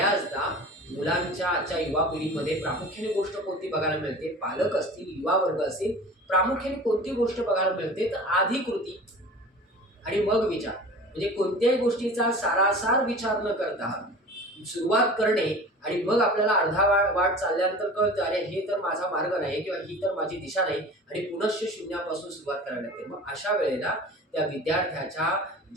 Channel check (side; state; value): both; normal; correlation 0.39